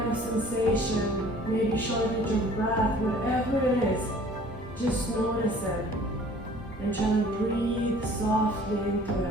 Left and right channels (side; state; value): both; normal; correlation 0.51